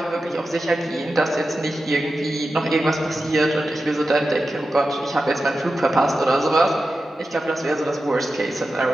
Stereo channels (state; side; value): normal; both; correlation 0.92